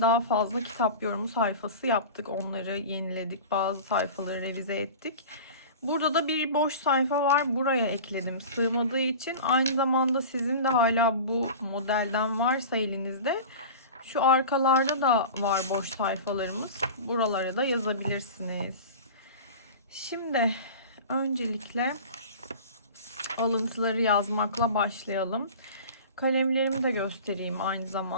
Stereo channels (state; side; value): inverted; both; correlation -0.35